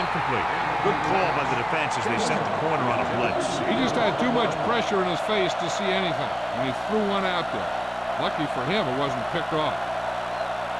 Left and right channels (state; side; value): identical; both; correlation 1.00